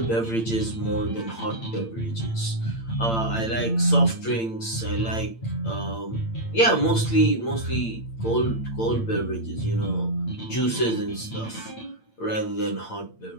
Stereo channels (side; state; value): right; late; 8.8 ms